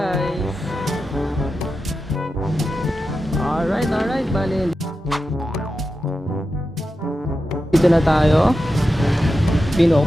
Alright, bali dito na tayo.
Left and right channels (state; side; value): normal; both; correlation 0.90